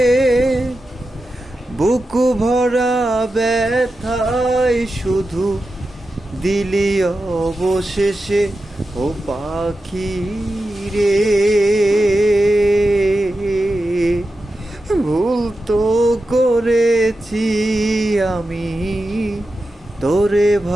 বুকু ভরা ব্যথায় শুধু দিলি অবশেষে। ও পাখি রে, ভুল তো করেছি আমি তোরে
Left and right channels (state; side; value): normal; both; correlation 0.91